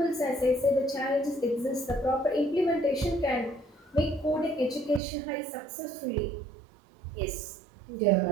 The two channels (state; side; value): drops out; left; at 5.0 s